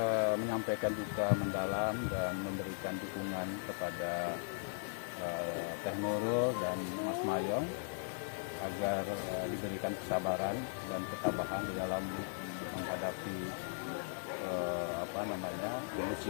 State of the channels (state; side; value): silent; right; digital silence